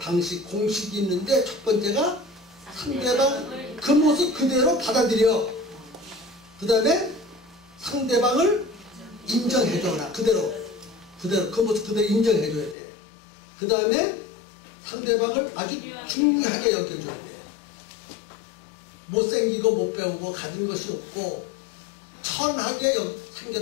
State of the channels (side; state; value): right; drops out; at 12.8 s